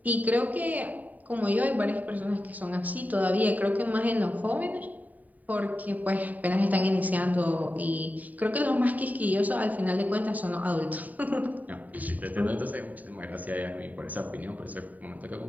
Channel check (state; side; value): late; left; 0.076 ms